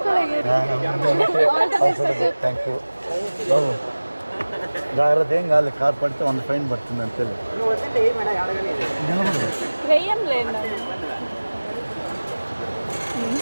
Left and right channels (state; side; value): inverted; both; correlation -1.00